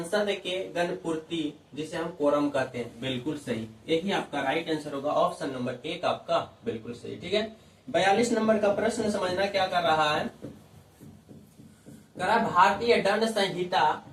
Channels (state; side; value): identical; both; correlation 1.00